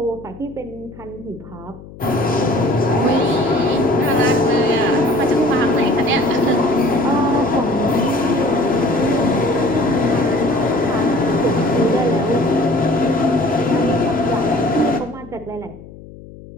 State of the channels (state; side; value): noise; left; hum, 18 dB below the sound